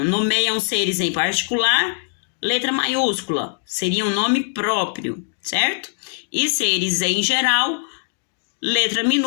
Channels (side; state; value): right; silent; digital silence